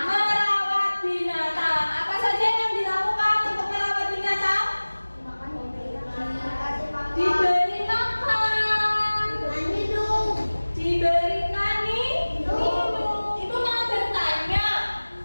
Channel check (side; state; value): both; inverted; correlation -1.00